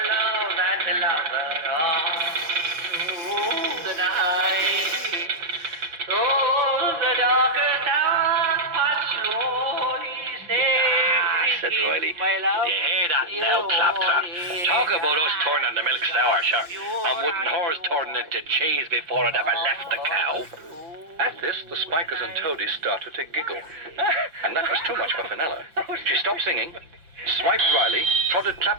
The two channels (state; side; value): late; left; 5.7 ms